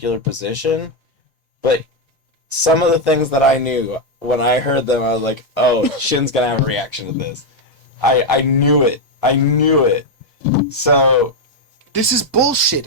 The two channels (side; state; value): both; normal; correlation 0.02